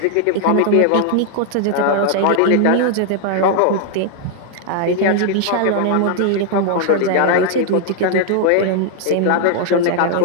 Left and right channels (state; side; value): different; both; correlation 0.00